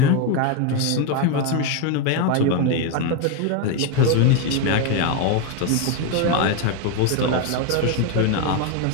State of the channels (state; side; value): different; both; correlation 0.02